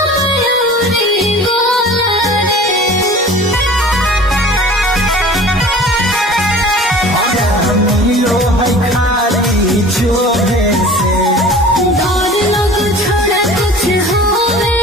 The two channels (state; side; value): normal; both; correlation 0.43